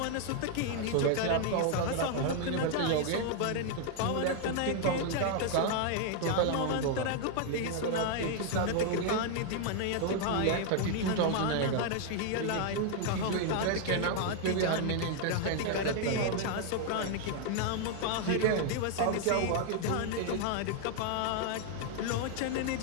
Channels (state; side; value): different; both; correlation 0.00